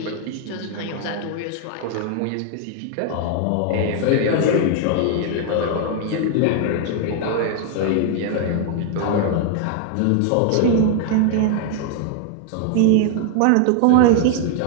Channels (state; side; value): different; both; correlation 0.00